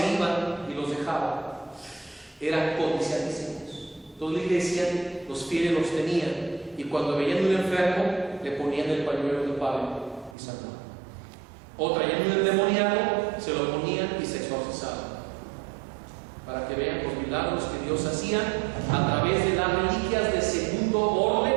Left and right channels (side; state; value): left; drops out; at 10.4 s